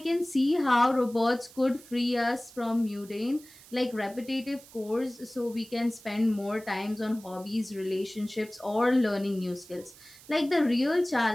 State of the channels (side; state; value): right; noise; hiss, 22 dB below the sound